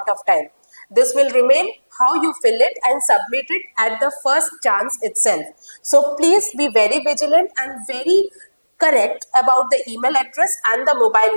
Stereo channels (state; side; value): inverted; both; correlation -1.00